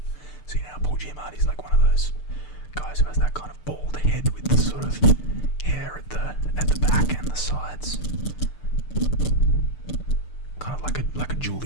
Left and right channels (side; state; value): right; late; 6.7 ms